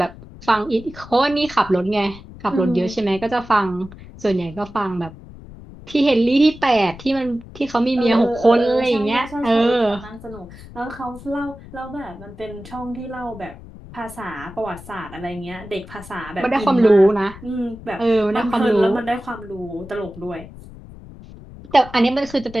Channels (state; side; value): noise; left; rumble, 17 dB below the sound